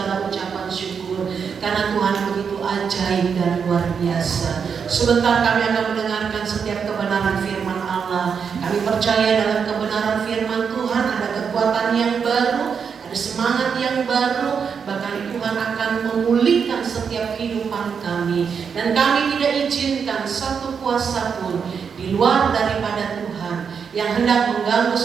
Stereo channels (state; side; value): quieter; left; 6.5 dB